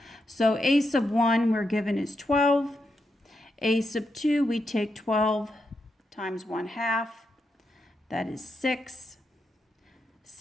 So A sub 1 we're given is 12. A sub 2, we take 12 times 1/2. That is 6.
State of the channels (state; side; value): normal; both; correlation 0.84